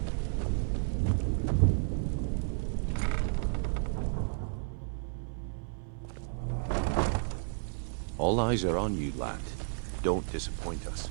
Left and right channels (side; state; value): left; silent; 55 dB below the other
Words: All eyes are on you, lad. Don't disappoint us.